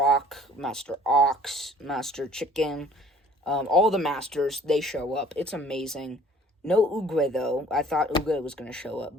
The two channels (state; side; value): normal; both; correlation 0.53